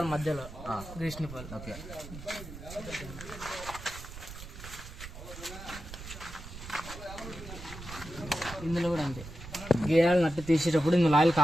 మధ్యలో గ్రీస్ నిప్పలు. ఓకే, ఇందులో కూడా అంతే. గేరాలు నట్టు తీసేటప్పుడు ఇందులో ఆయిల్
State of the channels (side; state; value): right; noise; rumble, 12 dB below the sound